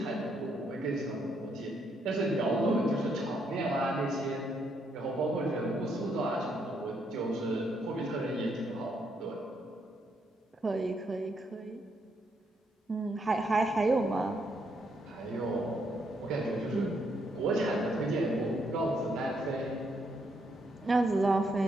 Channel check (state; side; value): normal; both; correlation 0.75